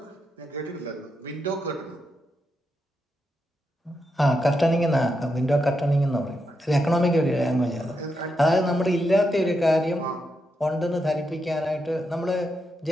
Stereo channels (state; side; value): normal; both; correlation 0.84